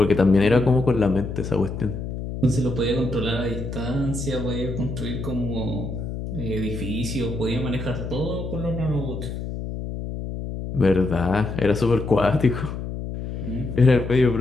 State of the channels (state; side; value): noise; left; hum, 6 dB below the sound